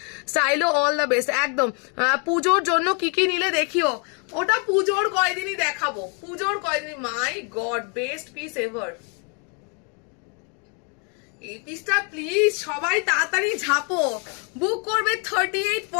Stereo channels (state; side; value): quieter; right; 37.4 dB